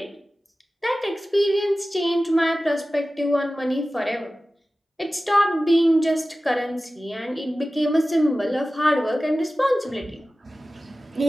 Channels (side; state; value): both; normal; correlation 0.96